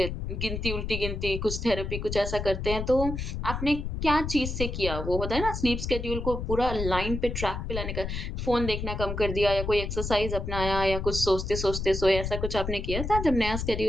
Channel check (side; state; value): left; noise; rumble, 4 dB below the sound